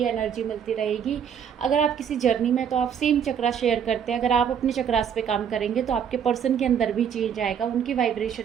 एनर्जी मिलती रहेगी। अगर आप किसी जर्नी में तो आप सेम चक्रा शेयर करते हैं, अगर आप अपने चक्रास पे काम करेंगे तो आपके पर्सन के अंदर भी चेंज आएगा, उनकी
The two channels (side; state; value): left; quieter; 8.0 dB